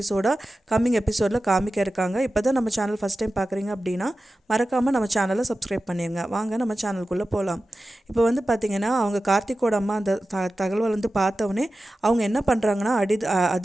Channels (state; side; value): normal; both; correlation 0.94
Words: கம்மிங் எபிசோடில் காமிக்க இருக்காங்க. இப்போ தான் நம்ம சேனல் ஃபஸ்ட் டைம் பார்க்குறீங்க அப்படின்னா மறக்காமல் நம்ம சேனலை சப்ஸ்கிரைப் பண்ணிடுங்க. வாங்க நம்ம சேனலுக்குள்ளே போகலாம். இப்போ வந்து பார்த்திங்கன்னா அவங்க கார்த்திக்கோட அம்மா அந்த தகவல் வந்து பார்த்தவொடனே அவங்க என்ன பண்ணுறாங்கன்னா